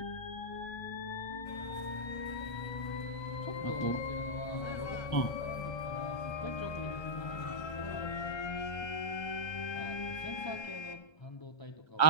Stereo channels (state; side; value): late; right; 1.3 ms